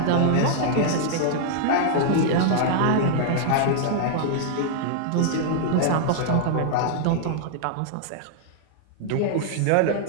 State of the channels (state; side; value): different; both; correlation -0.01